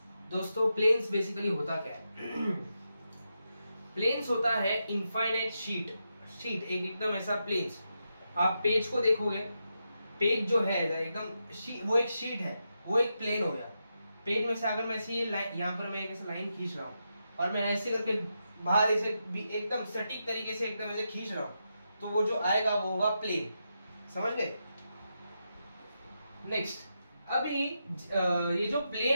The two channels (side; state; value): both; inverted; correlation -0.86